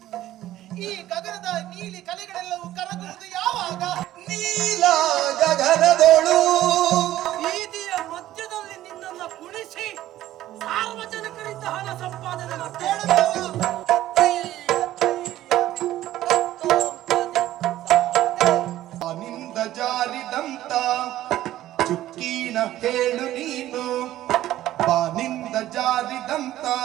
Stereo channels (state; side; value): quieter; left; 14.0 dB